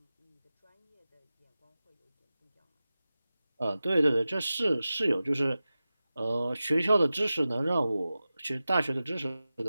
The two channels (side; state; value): both; inverted; correlation -0.95